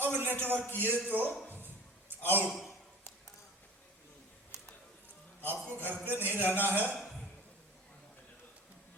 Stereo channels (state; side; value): normal; both; correlation 0.41